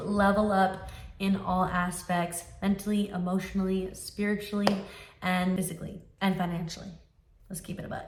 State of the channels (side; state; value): both; identical; correlation 1.00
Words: up in all aspects, mentally, emotionally, spiritually, and physically, and financially. Let's keep it a